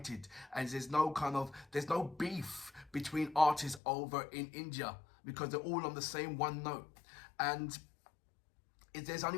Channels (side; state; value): right; drops out; at 3.8 s